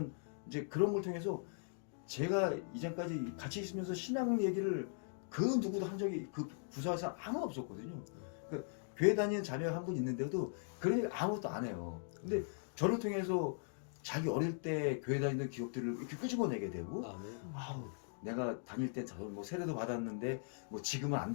이제 그런 걸 통해서 제가 이전까지 같이 있으면서 신앙 얘기를 그 누구도 한 적이 그 부서에서 아무도 없었거든요. 그러니까 교회 다니는 자녀가 한 분 있는데도 그런 얘기 아무것도 안 해요. 근데 저를 통해서 자기 어릴 때 교회 다니던 기억들을 이렇게 끄집어내게 되고 내가 다닐 땐 뭐 세례도 받았는데 뭐 지금은 안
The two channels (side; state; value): right; silent; digital silence